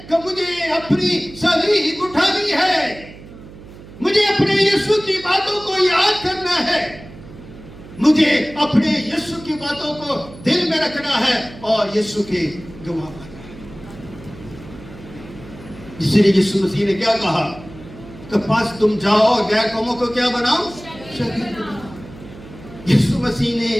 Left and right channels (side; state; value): right; noise; hum, 18 dB below the sound